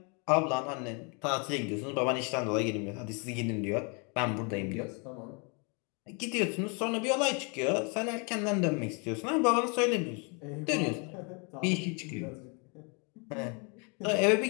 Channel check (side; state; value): right; quieter; 34.2 dB